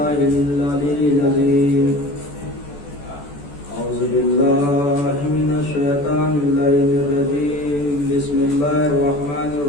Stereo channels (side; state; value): right; late; 14 ms